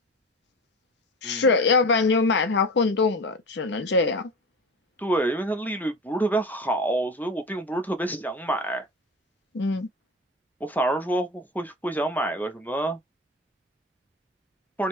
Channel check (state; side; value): normal; both; correlation 0.31